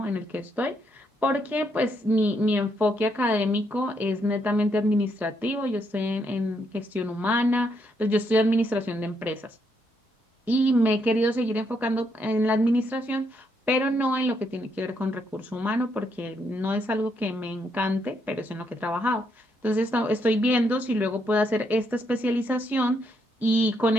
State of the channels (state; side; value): normal; both; correlation 0.76